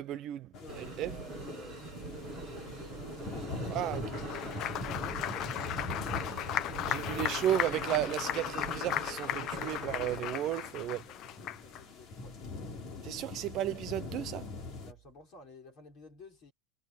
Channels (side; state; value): both; normal; correlation 0.34